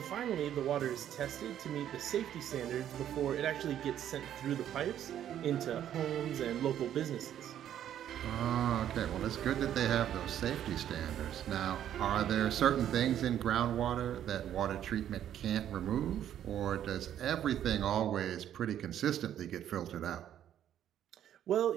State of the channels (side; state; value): left; quieter; 10.7 dB